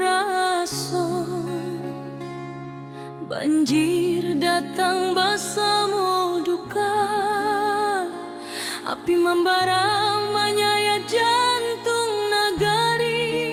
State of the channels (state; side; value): identical; both; correlation 1.00